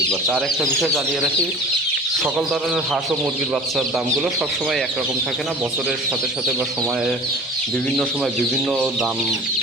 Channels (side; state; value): both; normal; correlation 0.41